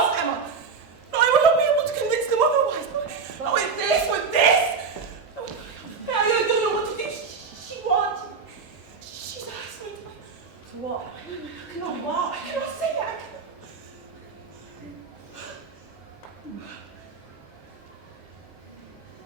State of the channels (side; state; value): left; quieter; 5.2 dB